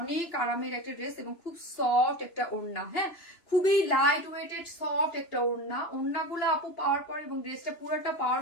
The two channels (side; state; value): right; late; 2.8 ms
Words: অনেক আরামের একটা ড্রেস, এবং খুব সফট একটা ওড়না, হ্যাঁ, খুবই লাইট ওয়েটেড সফট একটা ওড়না। ওড়নাগুলো আপু পাওয়ার পরে এবং ড্রেসটা পুরোটা পাওয়ার